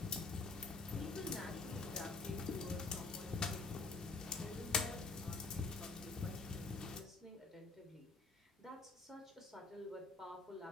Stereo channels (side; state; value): right; quieter; 3.8 dB